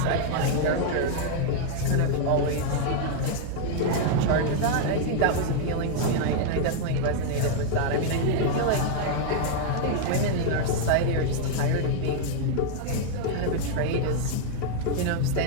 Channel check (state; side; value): different; both; correlation 0.00